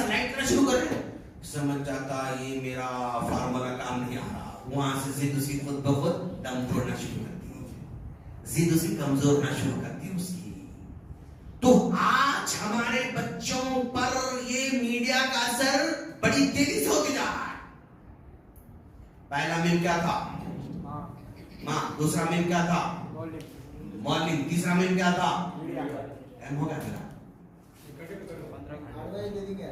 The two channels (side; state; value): both; identical; correlation 1.00